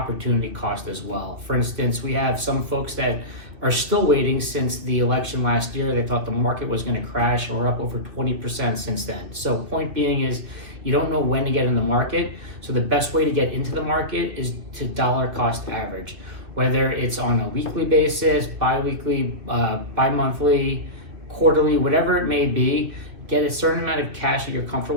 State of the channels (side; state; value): left; late; 2.5 ms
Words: cost as well. For instance, we have some folks that are still waiting since the election last year. They thought the market was going to crash, and we're up over 20% since then. So point being is you don't know when to get in the market. So the best way to get into the market is to dollar cost average, whether it's on a weekly basis, bi-weekly, bi-monthly, quarterly, whatever it may be. Get a certain amount of cash that you're